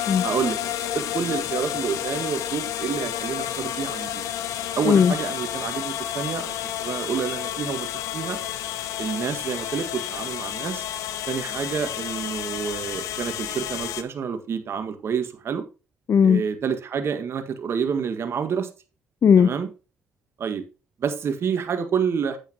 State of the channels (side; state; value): both; normal; correlation 0.58